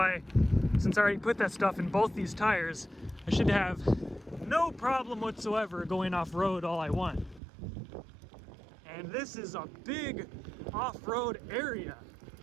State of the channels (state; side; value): drops out; left; at 7.4 s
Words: since I already put that stuff in both these tires, I should have no problem whatsoever going off-road all I want. And this is a big off-road area,